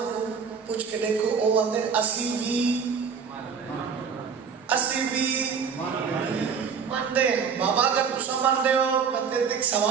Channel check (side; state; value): left; quieter; 6.3 dB